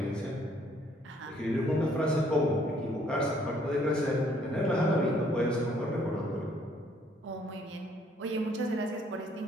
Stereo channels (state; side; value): normal; both; correlation 0.64